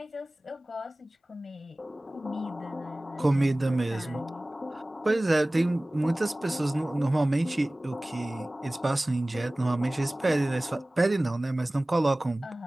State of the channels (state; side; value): normal; both; correlation 0.98